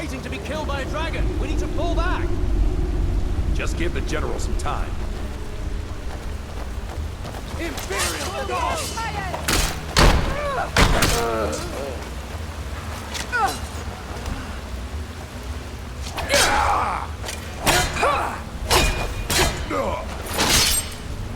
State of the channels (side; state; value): both; identical; correlation 1.00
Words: to be killed by a dragon. We need to pull back. Just give the General some time. Imperial dog!